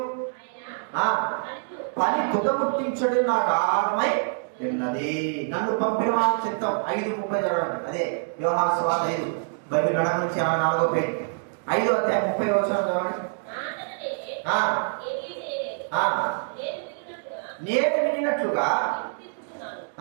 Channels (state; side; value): silent; left; digital silence